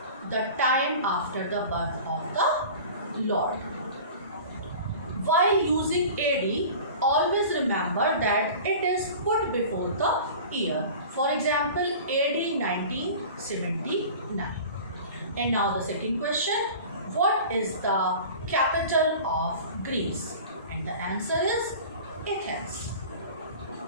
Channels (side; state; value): both; inverted; correlation -0.39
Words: the time after the birth of the Lord. While using AD, always remember that it is put before the year. For example, AD 1979. And now the second question, what is the capital of Greece? And the answer is Athens.